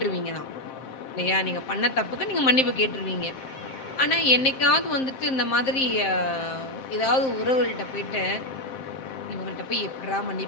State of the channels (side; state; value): right; late; 7.6 ms